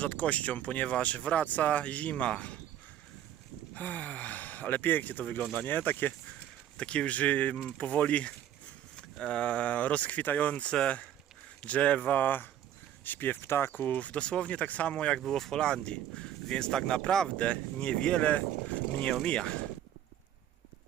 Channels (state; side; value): quieter; left; 11.1 dB